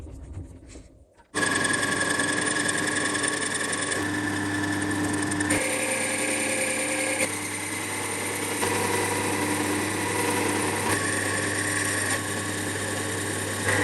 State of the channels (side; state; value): both; identical; correlation 1.00